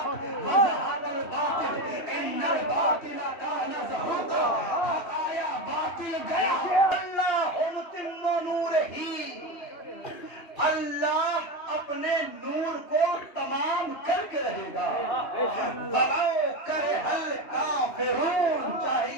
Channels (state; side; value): late; right; 2.8 ms